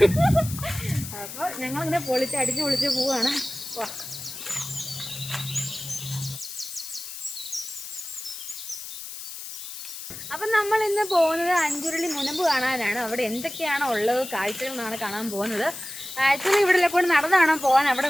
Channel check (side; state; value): left; noise; hiss, 10 dB below the sound